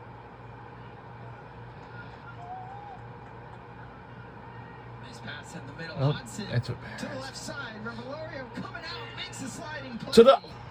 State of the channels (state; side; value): identical; both; correlation 1.00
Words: Nice pass in the middle. Oh, Hudson that's a to the pass. left side. Revelorio coming out, makes a sliding play. To the.